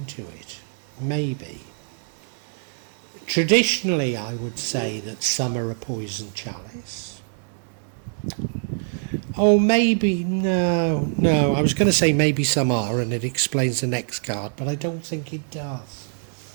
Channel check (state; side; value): silent; left; digital silence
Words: it. Maybe. Traditionally, I would say that some are a poison chalice. Oh, maybe, no, I was going to say maybe some are, and it explains the next card, but I don't think it does.